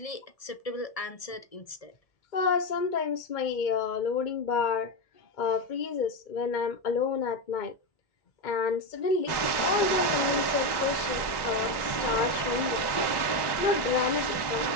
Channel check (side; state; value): right; late; 1.1 ms